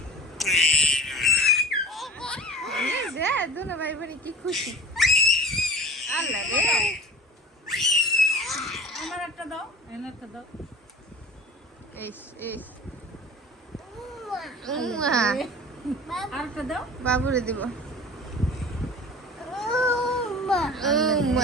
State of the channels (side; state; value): both; normal; correlation 0.40